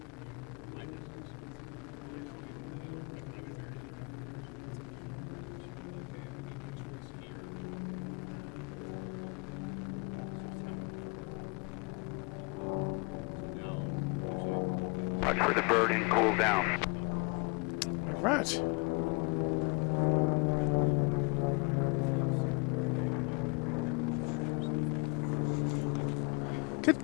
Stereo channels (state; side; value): quieter; right; 31.8 dB